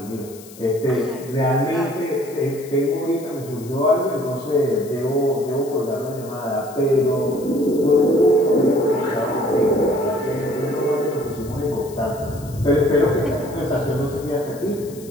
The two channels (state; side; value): noise; left; hiss, 20 dB below the sound